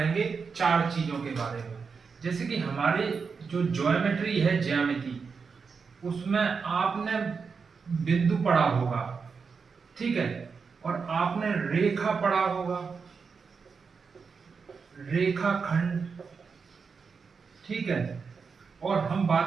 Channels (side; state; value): left; quieter; 5.4 dB